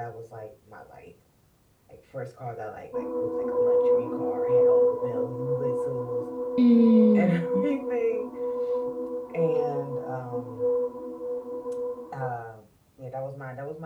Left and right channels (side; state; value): both; identical; correlation 1.00